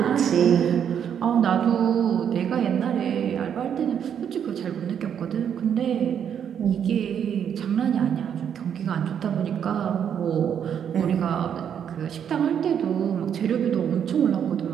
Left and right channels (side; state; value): left; quieter; 8.5 dB